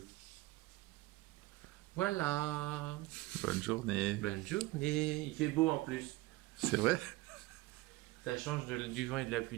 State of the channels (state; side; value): quieter; left; 20.0 dB